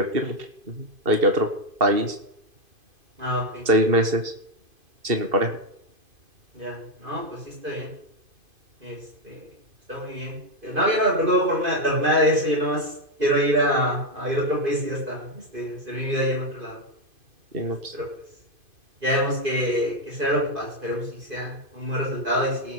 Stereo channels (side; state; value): left; late; 2.5 ms